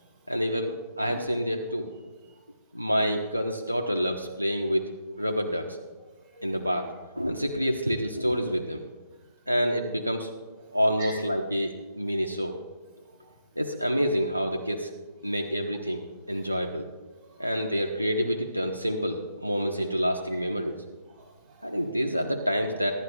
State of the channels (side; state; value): both; inverted; correlation -0.86